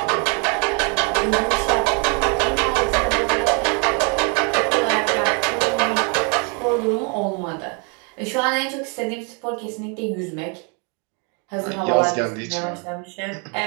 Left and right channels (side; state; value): left; quieter; 36.0 dB